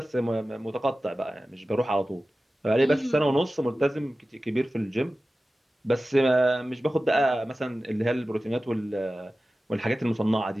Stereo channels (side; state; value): both; normal; correlation 0.95